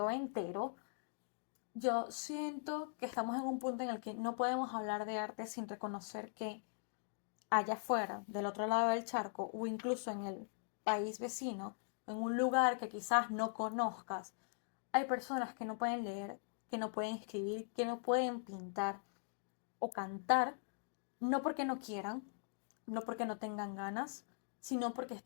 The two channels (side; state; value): right; silent; digital silence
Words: entero, yo siento que estamos en un punto en el que no podemos hablar de arte sin reconocer que allá afuera, del otro lado del charco, o incluso en el país vecino, en un lugar que quizás no conozcas, hay personas que no pueden leer, que no pueden escribir, que no pueden pintar o cantar, no porque no quieran, no porque no tengan ganas, sino porque